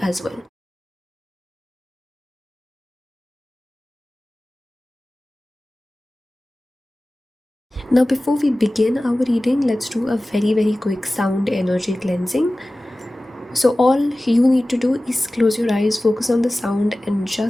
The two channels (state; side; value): normal; both; correlation 0.97